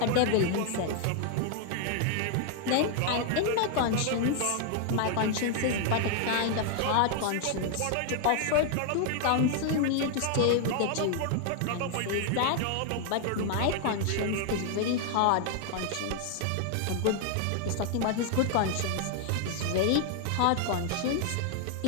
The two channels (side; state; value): both; different; correlation 0.00